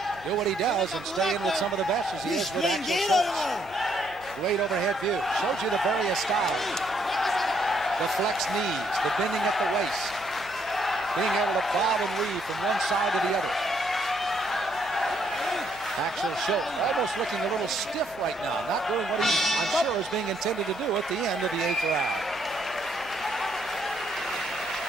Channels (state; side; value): noise; left; hum, 26 dB below the sound